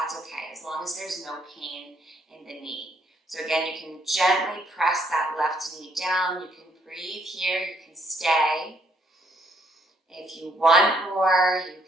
okay, as long as there's no pain in the knee. So again, you can gently press that left knee down. You can breathe here, you can stay. If you want more, you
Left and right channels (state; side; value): normal; both; correlation 0.69